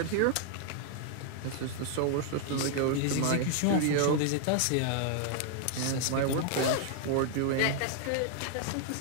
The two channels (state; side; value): different; both; correlation 0.00